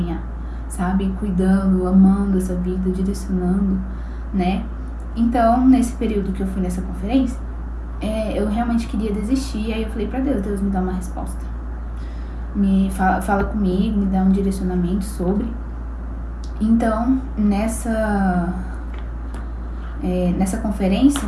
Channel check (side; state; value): both; identical; correlation 1.00